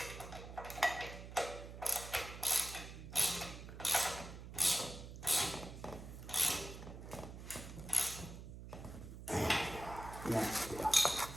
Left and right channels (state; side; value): noise; right; hum, 11 dB below the sound